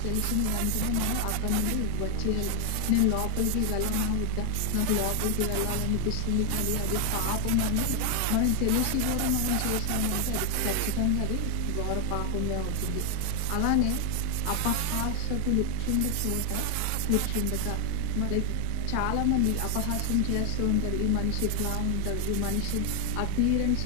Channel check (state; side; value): different; both; correlation 0.00